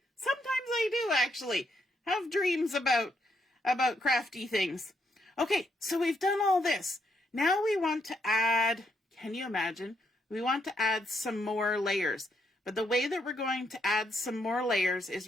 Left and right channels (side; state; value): both; normal; correlation 0.76